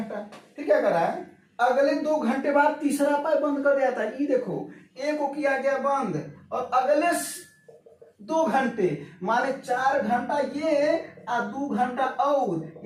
फिर क्या करा है, अगले 2 घंटे बाद तीसरा पाइप बंद कर दिया था। ये देखो, एक को किया गया बंद, और अगले 2 घंटे माने 4 घंटा ये और 2 घंटा और,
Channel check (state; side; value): identical; both; correlation 1.00